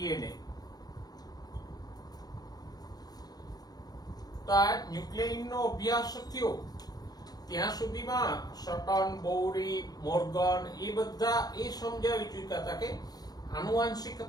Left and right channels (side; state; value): right; late; 0.19 ms